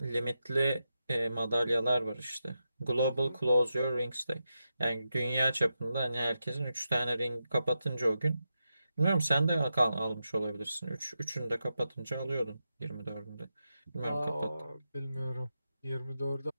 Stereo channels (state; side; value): inverted; both; correlation -0.88